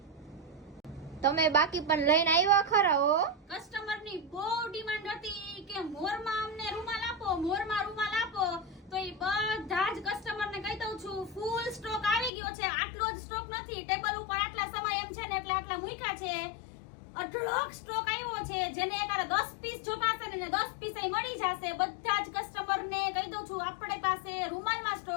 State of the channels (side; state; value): right; drops out; at 12.3 s